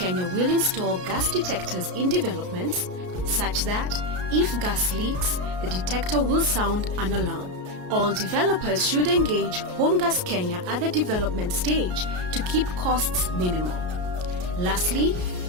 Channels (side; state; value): left; late; 33 ms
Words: will install gas detectors in developments such that if gas leaks, the detector will sound an alarm. All developers should engage Home Gas Kenya at the development stage to keep costs minimal. Lastly,